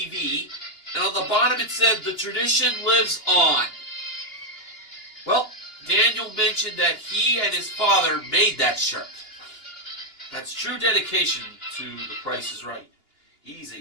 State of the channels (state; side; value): late; right; 2.8 ms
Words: and on the bottom it said, "The tradition lives on." Well, Daniel mentioned that he and his father made that shirt. That's true dedication to The Price is Right. He's